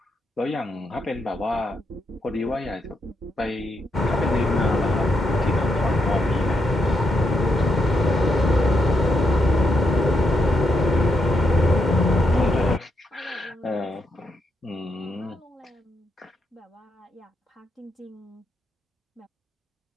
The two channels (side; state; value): both; normal; correlation 0.81